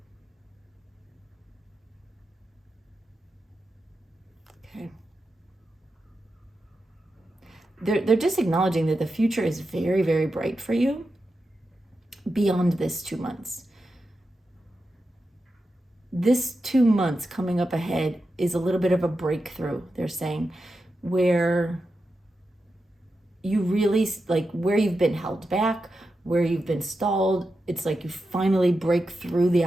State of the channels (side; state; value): both; normal; correlation 0.89